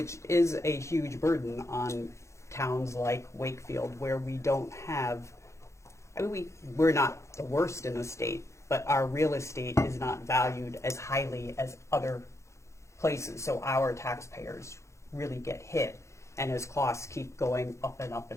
is a huge burden on towns like Wakefield, where we don't have, we're not the worst in the state, but our real estate is not valued as highly as other places, so our taxpayers really get hit. And as costs keep going up and up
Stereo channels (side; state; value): right; late; 0.14 ms